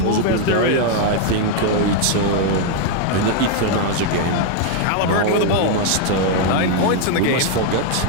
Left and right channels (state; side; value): different; both; correlation 0.00